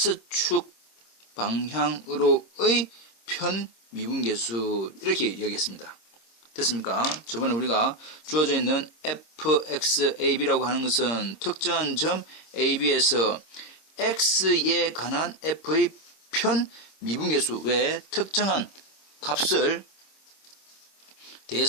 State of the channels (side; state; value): right; late; 26 ms